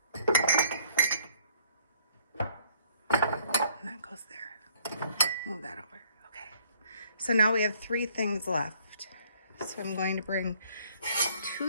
that goes there. Move that over. Okay. So now we have 3 things left. So I'm going to bring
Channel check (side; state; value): both; inverted; correlation -0.61